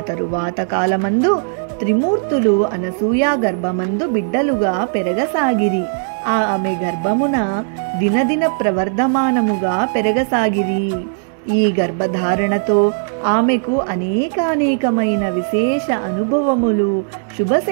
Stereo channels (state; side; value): silent; left; digital silence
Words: తరువాత కాలమందు త్రిమూర్తులు అనసూయ గర్భమందు బిడ్డలుగా పెరగసాగిరి. ఆమె గర్భమున దినదిన ప్రవర్ధమానముగా పెరగసాగిరి. ఈ గర్భధారణతో ఆమెకు అనేకానేకమైన విశేష అనుభవములు,